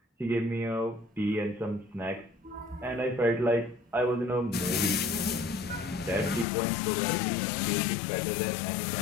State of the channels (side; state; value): right; drops out; at 6.5 s